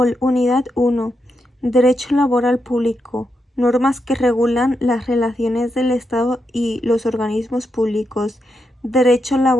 1. Derecho laboral público. Normas que regulan las relaciones del Estado y los organismos públicos. Derecho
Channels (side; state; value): both; normal; correlation 0.84